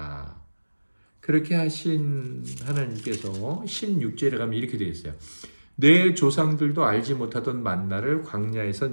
그렇게 하신 하나님께서 16절에 가면 이렇게 되어 있어요. 내 조상들도 알지 못하던 만나를 광야에서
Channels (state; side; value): inverted; both; correlation -1.00